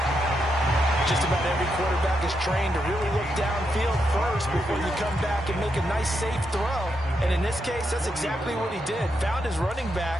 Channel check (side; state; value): both; normal; correlation 0.82